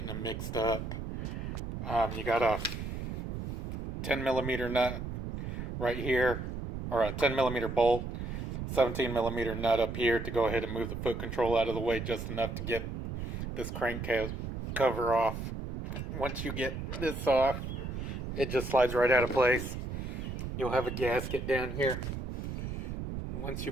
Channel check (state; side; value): noise; right; rumble, 5 dB below the sound